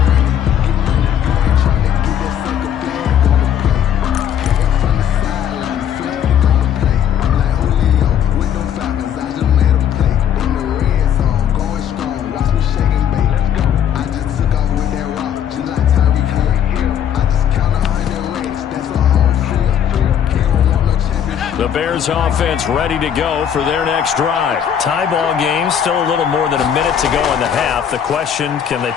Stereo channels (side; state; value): right; quieter; 9.1 dB